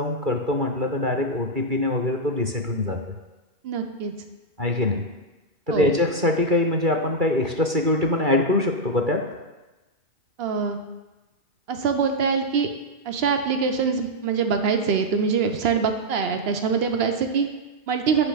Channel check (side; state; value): left; late; 2.3 ms